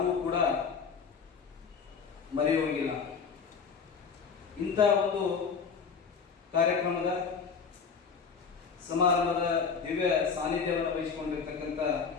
ಕೂಡ ಮರೆಯುವಂಗಿಲ್ಲ. ಇಂಥ ಒಂದು ಕಾರ್ಯಕ್ರಮದ ಸಮಾರಂಭದ ದಿವ್ಯ ಸಾನ್ನಿಧ್ಯವನ್ನು ವಹಿಸಿಕೊಂಡಿರ್ತಕ್ಕಂಥ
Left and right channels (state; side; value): quieter; right; 5.8 dB